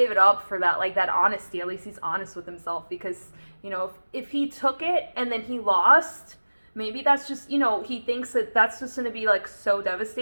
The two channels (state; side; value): inverted; both; correlation -1.00